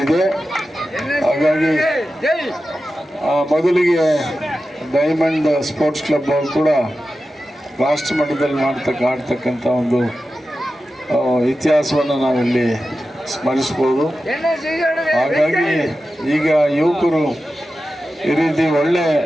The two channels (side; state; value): both; normal; correlation 0.93